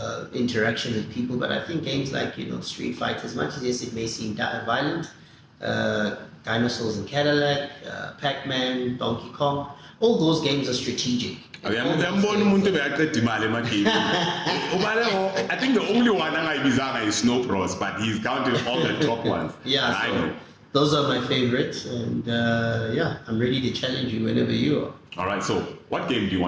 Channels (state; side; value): identical; both; correlation 1.00